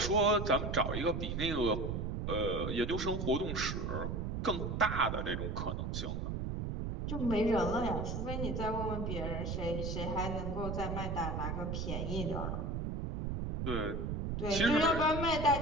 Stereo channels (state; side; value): noise; right; rumble, 2 dB below the sound